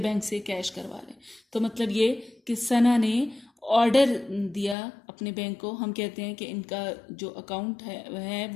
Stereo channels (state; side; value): drops out; right; at 4.8 s